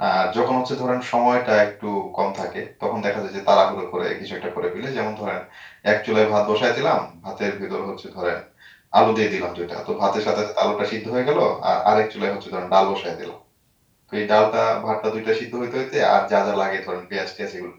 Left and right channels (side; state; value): both; identical; correlation 1.00